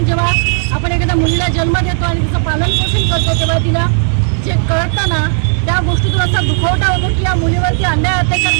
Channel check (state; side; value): silent; left; 71 dB below the other